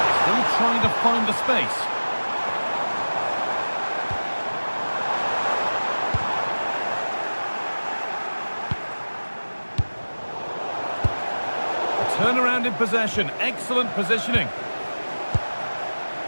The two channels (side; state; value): both; inverted; correlation -1.00